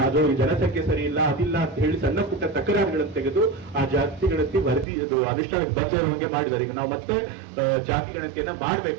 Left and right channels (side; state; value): left; drops out; at 4.9 s